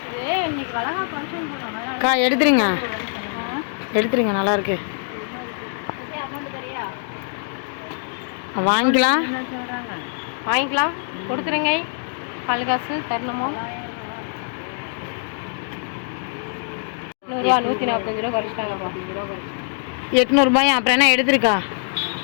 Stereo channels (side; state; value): right; silent; digital silence